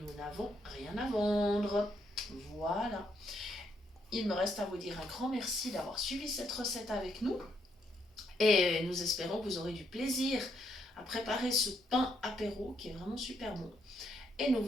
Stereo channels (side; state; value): both; normal; correlation 0.75